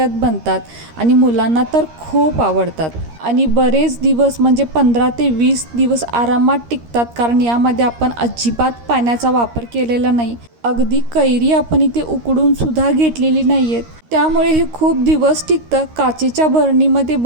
बनतात आणि मुलांना तर खूप आवडतात. आणि बरेच दिवस म्हणजे 15 ते 20 दिवस आरामात टिकतात, कारण यामध्ये आपण अजिबात पाण्याचा वापर केलेला नाही. अगदी कैरी आपण इथे उकडून सुद्धा घेतलेली नाही आहेत, त्यामुळे हे खूप दिवस टिकतं. काचेच्या बरणीमध्ये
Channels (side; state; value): left; late; 13 ms